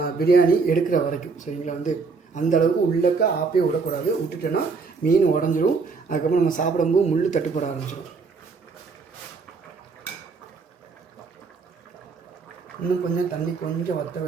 பிரியாணி எடுக்கிற வரைக்கும் சரிங்களா வந்து அந்தளவுக்கு உள்ளக்க ஆப்பே விடக்கூடாது. விட்டுட்டோன்னா மீன் உடஞ்சிரும். அதுக்கப்புறம் நம்ம சாப்பிடும்போது முள் தட்டுப்பட ஆரம்பிச்சிடும். இன்னும் கொஞ்சம் தண்ணி கொஞ்சம் வற்ற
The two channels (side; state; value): left; quieter; 4.7 dB